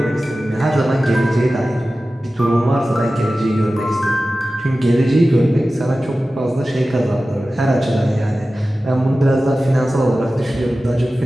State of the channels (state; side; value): normal; both; correlation 0.95